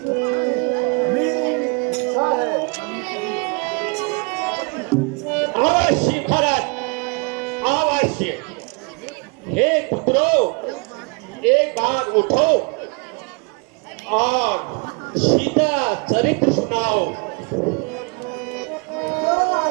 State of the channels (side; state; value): left; quieter; 33.1 dB